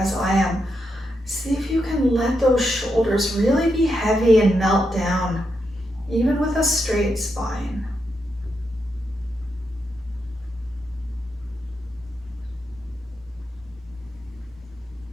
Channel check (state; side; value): normal; both; correlation 0.83